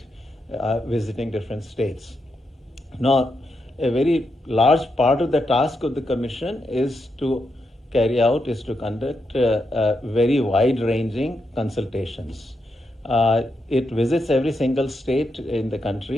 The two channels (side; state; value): both; normal; correlation 0.84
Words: visiting different states. Now, a very large part of the task of the commission is to conduct very wide-ranging consultations. It visits every single state in the